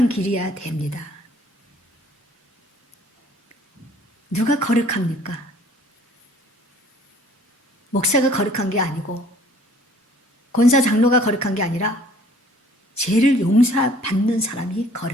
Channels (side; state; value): both; normal; correlation 0.55